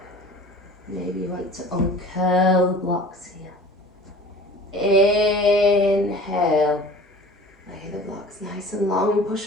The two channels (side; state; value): both; normal; correlation 0.43